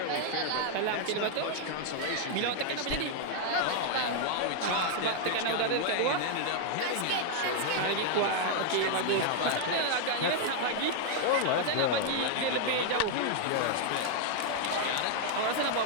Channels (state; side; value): different; both; correlation 0.00